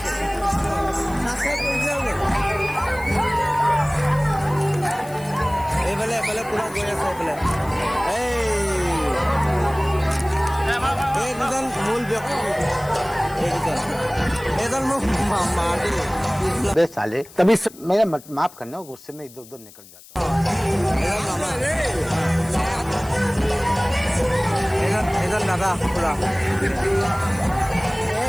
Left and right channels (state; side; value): noise; left; hiss, 21 dB below the sound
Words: নাচক এইফালে পুৰা গৈ আছে এই দুজন মূল ব্যক্তি এইজন মোক बे साले तभी मेरा माफ करना गुस्से में इधर उधर निकल जाता हूँ এইজন দাদা পুৰা